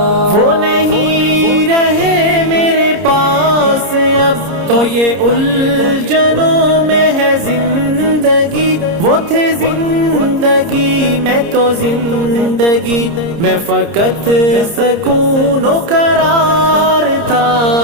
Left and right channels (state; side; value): late; left; 30 ms